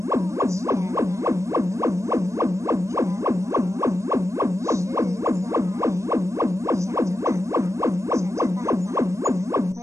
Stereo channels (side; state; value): left; late; 0.15 ms